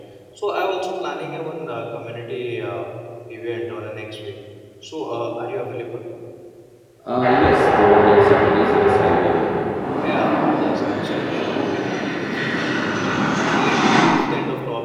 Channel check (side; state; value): both; identical; correlation 1.00